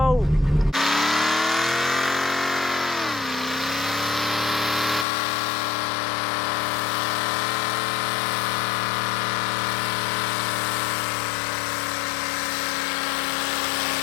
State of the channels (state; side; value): drops out; right; at 5.1 s